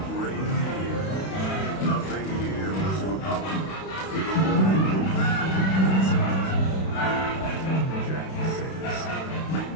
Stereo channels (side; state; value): right; late; 32 ms